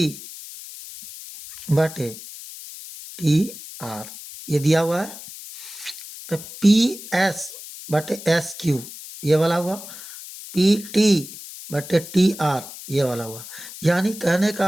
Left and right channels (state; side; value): noise; left; hiss, 14 dB below the sound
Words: बटे टी आर, ये दिया हुआ है। तो पी एस बटे एस क्यू ये वाला हुआ, पी टी बटे टी आर ये वाला हुआ। यानी कहने